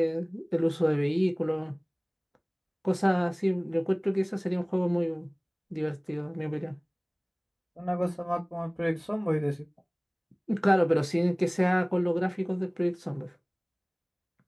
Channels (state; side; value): identical; both; correlation 1.00